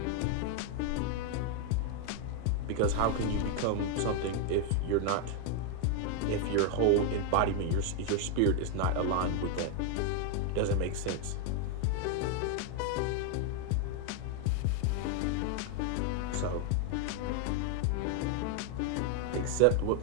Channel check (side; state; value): both; different; correlation 0.01